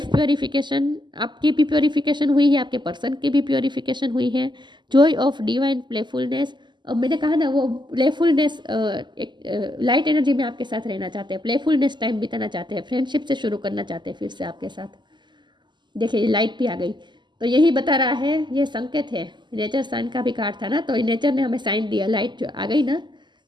प्योरिफिकेशन, आपकी भी प्योरिफिकेशन हुई है, आपके पर्सन की भी प्योरिफिकेशन हुई है। जॉय ऑफ डिवाइन प्लेफुलनेस, अब मैंने कहा ना वो प्लेफुलनेस, एक लाइट एनर्जी में आपके साथ रहना चाहते हैं, प्लेफुलनेस टाइम बिताना चाहते हैं, फ्रेंडशिप से शुरू करना चाहते हैं फिर से आपके साथ। देखिए लाइट भी आ गई, तो यही बता रहा है, ये संकेत है। नेचर साइन का भी कार्ड था ना, तो नेचर ने हमें साइन दिया, लाइट जो आ गई ना,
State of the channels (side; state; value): left; late; 0.22 ms